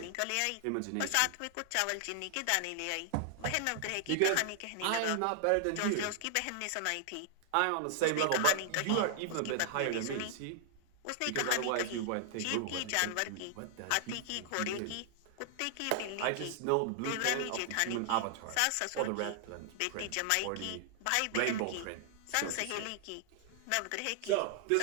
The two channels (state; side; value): different; both; correlation 0.00